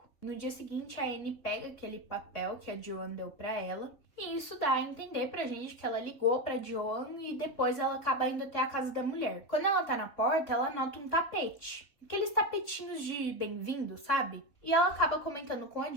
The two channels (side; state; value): right; late; 3.4 ms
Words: No dia seguinte, a Anne pega aquele papel que a Joan deu pra ela, e isso dá a entender pra gente que ela ligou pra Joan e depois ela acaba indo até a casa da mulher. Quando ela tá na porta, ela nota um tapete. Aqueles tapetinhos de bem-vindo, sabe? E ela acaba comentando com a